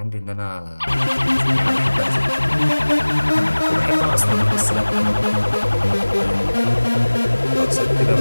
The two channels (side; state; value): both; inverted; correlation -1.00